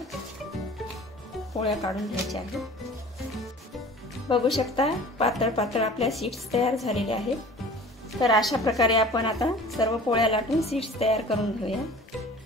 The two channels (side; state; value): both; normal; correlation 0.44